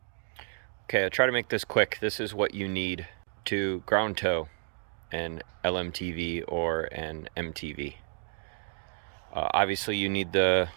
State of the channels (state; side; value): silent; left; 57 dB below the other